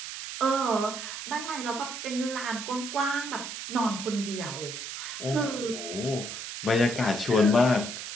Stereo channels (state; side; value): noise; right; hiss, 7 dB below the sound